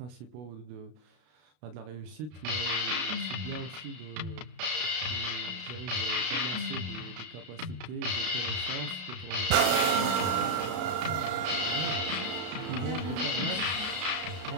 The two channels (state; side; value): late; left; 33 ms